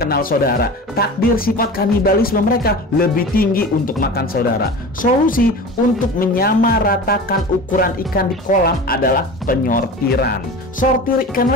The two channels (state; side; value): normal; both; correlation 0.34